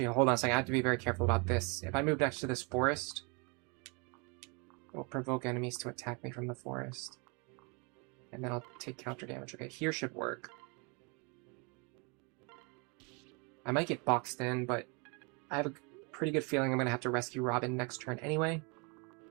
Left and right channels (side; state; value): left; quieter; 32.4 dB